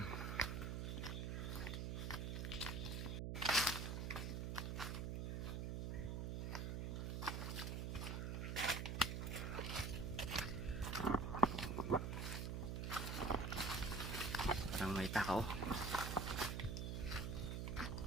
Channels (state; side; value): noise; right; hum, 1 dB below the sound